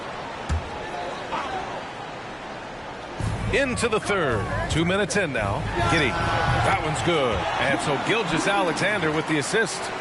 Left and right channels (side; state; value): both; identical; correlation 1.00